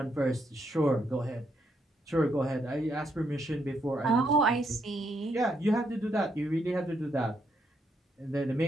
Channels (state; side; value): normal; both; correlation 0.77